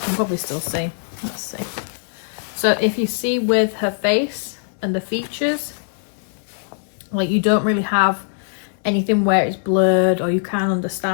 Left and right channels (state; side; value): silent; right; 64 dB below the other